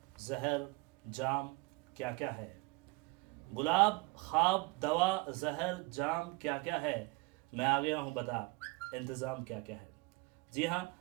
जहर, जाम, क्या क्या है? गुलाब, ख्वाब, दवा, जहर, जाम, क्या क्या है? मैं आ गया हूँ बता, इंतज़ाम क्या क्या है? जी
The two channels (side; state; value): left; quieter; 26.4 dB